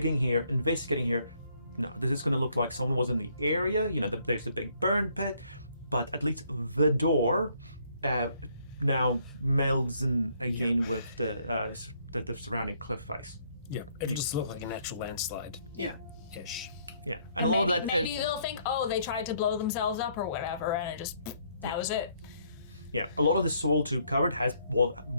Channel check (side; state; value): both; inverted; correlation -0.68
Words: here, investigating here. No, this is going to look like someone was in the area. There's the big burn pit, but at least the door now melds in again with the surrounding cliff face. Yeah, it'll just look like a natural landslide. Yeah. Ish. Yeah, and a lot of that. Maybe they'll think, oh, they tried to blow themselves up or whatever, and that was it. Yeah, a lot of the soil too covered